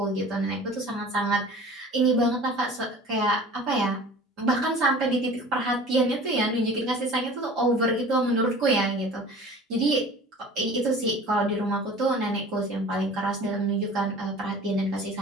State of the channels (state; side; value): normal; both; correlation 0.43